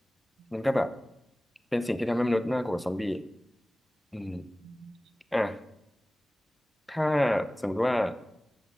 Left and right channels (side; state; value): both; normal; correlation 0.98